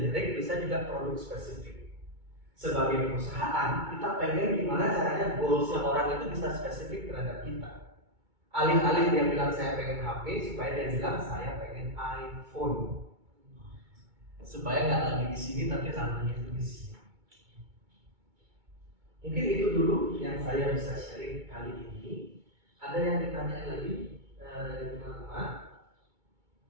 bisa juga produk spesifik. Sebagai perusahaan, kita pengen gimana caranya goalsnya orang itu bisa spesifik terhadap kita. Alih-alih dia bilang saya pengen HP, supaya dia bilang saya pengen iPhone. Supaya nggak lagi di sini tapi ranahnya itu di sini. Mungkin itu dulu yang saya bisa sharing kali ini. Ada yang ditanya lagi dari teman-teman?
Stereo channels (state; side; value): late; left; 2.2 ms